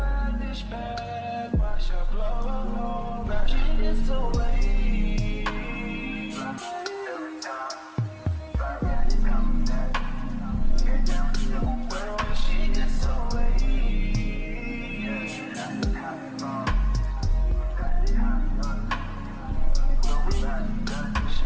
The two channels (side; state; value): both; identical; correlation 1.00